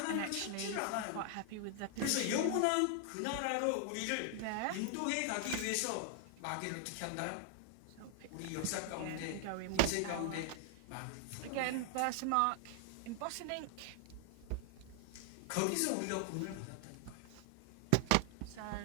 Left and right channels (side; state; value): both; different; correlation 0.00